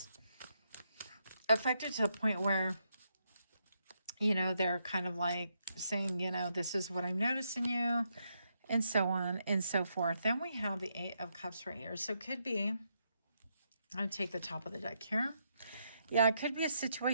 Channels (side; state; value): both; inverted; correlation -0.80